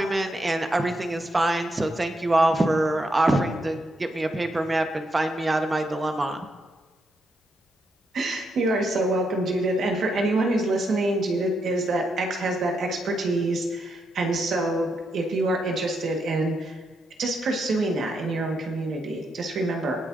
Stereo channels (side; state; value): both; normal; correlation 0.80